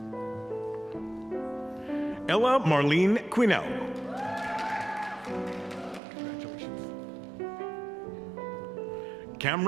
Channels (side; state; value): left; drops out; at 6.0 s